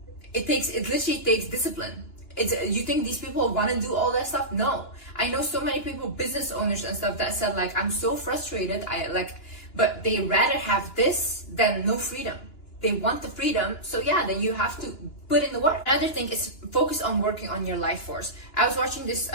It literally takes discipline. You think these people want to do all that stuff? No. I know so many people, business owners and stuff, that said like, I'm so frustrated. But they rather have this than no freedom. They want the freedom, so yeah, then you have to put in the work. Another thing is focus on working on your life force. I was watching this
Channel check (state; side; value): late; right; 2.9 ms